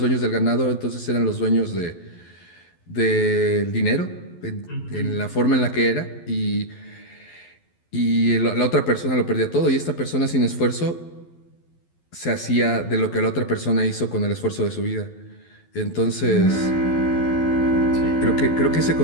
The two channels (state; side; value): late; right; 12 ms